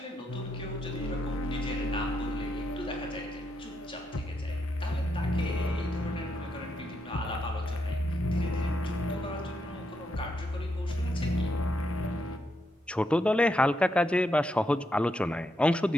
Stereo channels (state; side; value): normal; both; correlation 0.81